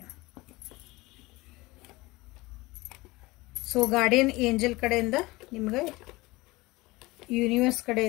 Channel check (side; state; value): right; quieter; 21.5 dB